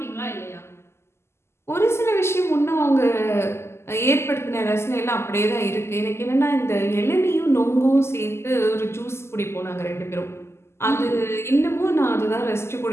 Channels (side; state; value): right; late; 0.12 ms